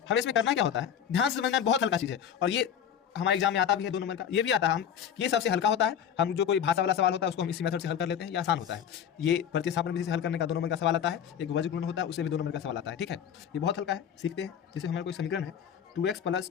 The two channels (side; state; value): right; quieter; 8.5 dB